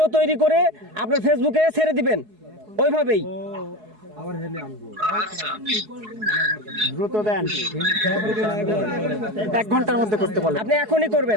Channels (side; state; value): left; late; 4.7 ms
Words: তৈরি করে আপনার ফেসবুকে ছেড়ে দিবেন ওইভাবেই। আচ্ছা দ্রুত দেন 1 ঘন্টার মধ্যে করতে বলেন। আপনি এখনই